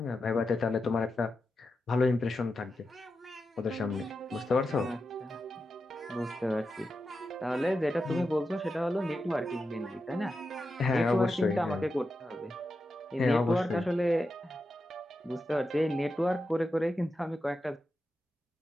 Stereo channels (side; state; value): both; normal; correlation 0.89